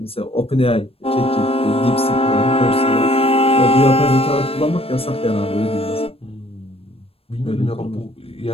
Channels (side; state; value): right; late; 0.28 ms